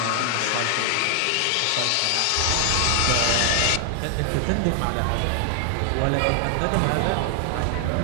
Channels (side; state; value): both; different; correlation 0.00